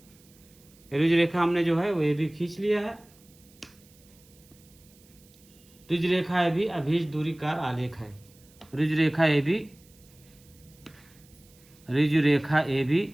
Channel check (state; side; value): noise; right; hiss, 28 dB below the sound